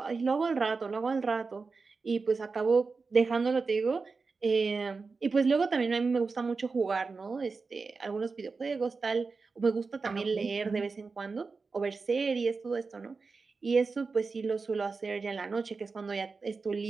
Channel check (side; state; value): left; quieter; 4.4 dB